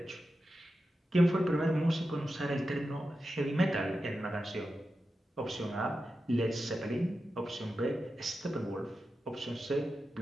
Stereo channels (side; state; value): both; normal; correlation 0.91